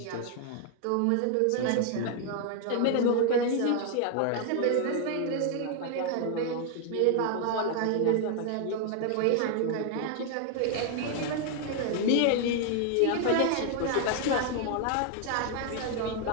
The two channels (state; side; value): different; both; correlation 0.00